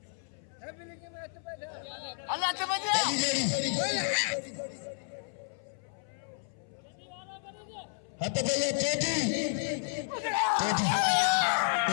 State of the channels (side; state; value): right; silent; 57 dB below the other